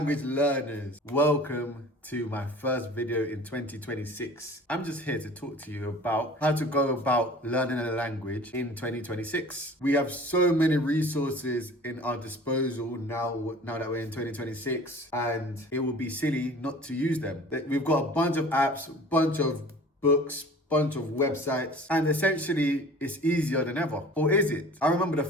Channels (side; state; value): both; normal; correlation 0.44